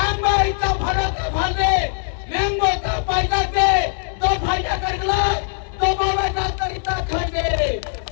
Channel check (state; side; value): silent; right; 59 dB below the other